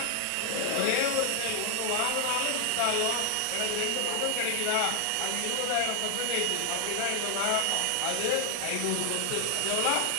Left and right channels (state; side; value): different; both; correlation 0.00